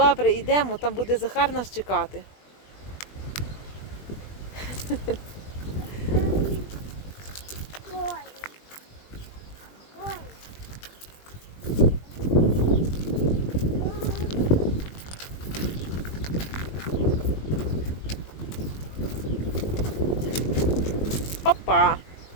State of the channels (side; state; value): right; late; 20 ms